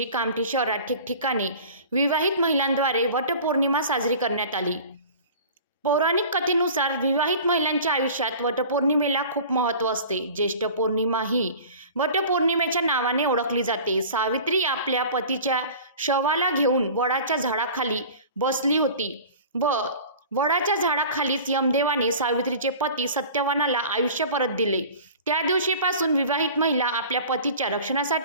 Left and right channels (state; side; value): inverted; both; correlation -0.41